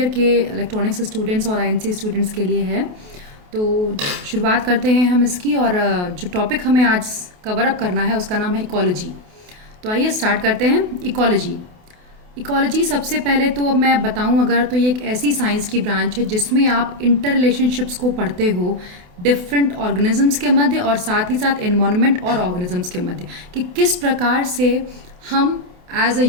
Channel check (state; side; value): late; left; 28 ms